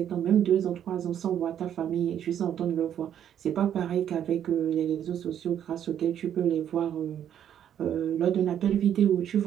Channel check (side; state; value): left; quieter; 9.8 dB